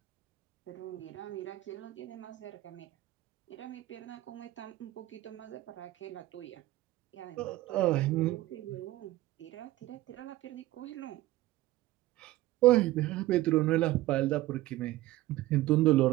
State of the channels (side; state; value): left; quieter; 16.7 dB